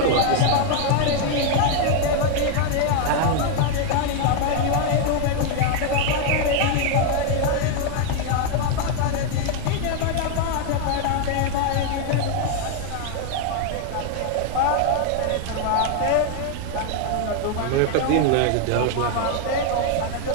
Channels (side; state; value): both; different; correlation 0.01